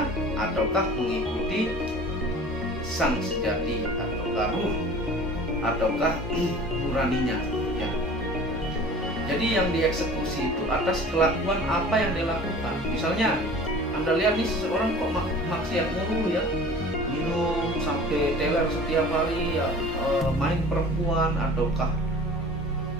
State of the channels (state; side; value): normal; both; correlation 0.43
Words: ataukah mengikuti sang sejati, ataukah ruh, ataukah nuraninya, ya. Jadi yang dieksekusi itu atas kelakuan apa yang dia lakukan. Misalnya Anda lihat nih, seseorang kok maksiat mulu, ya, minum sampai teler setiap hari, ya, main perempuan, ataukah